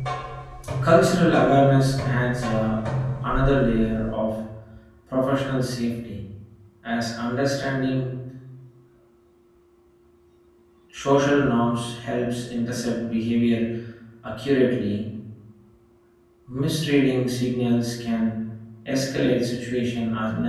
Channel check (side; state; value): both; identical; correlation 1.00